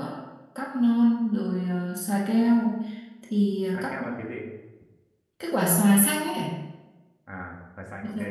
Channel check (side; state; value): both; identical; correlation 1.00